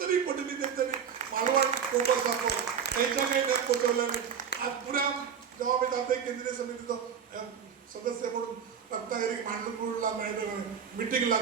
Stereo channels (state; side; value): quieter; left; 7.4 dB